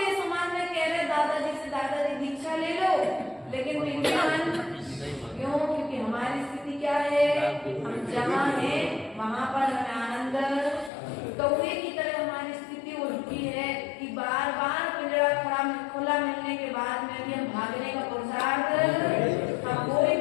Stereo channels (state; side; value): drops out; right; at 10.9 s